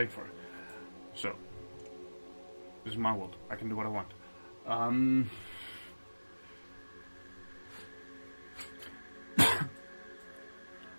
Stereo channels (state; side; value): inverted; both; correlation -1.00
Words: for. So this is my world. I can do what I want.